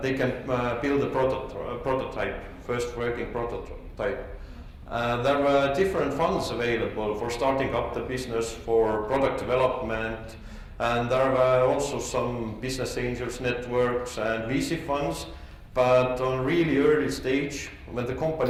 they can build a prototype, first working prototype. There were different funds available for starting up the business, for product development, and there were also some business angels networks and VC funds. But on really early stage, when the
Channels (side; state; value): both; identical; correlation 1.00